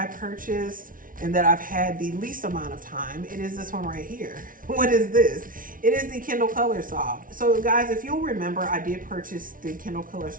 purchased and that I've had the least amount of time, it is this one right here. What is this? It is the Kindle Colorsoft. So guys, if you'll remember, I did purchase the Kindle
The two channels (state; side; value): late; left; 0.39 ms